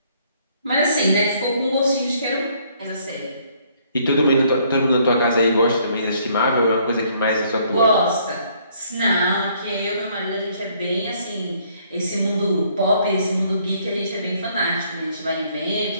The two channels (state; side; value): inverted; both; correlation -0.65